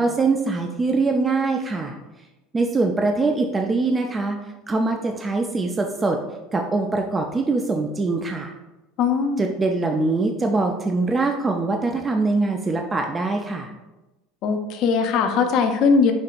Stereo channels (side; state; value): both; normal; correlation 0.65